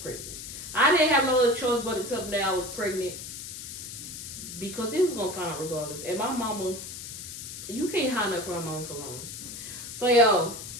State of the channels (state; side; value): noise; left; hiss, 10 dB below the sound